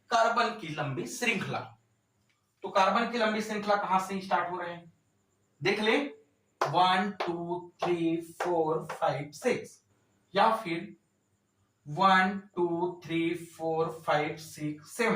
कार्बन की लंबी श्रृंखला। तो कार्बन की लंबी श्रृंखला कहां से स्टार्ट हो रहे हैं, देख ले 1 2 3 4 5 6, या फिर 1 2 3 4 5 6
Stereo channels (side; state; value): both; identical; correlation 1.00